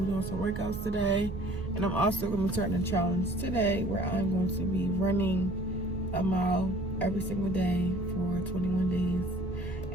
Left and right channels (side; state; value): both; normal; correlation 0.51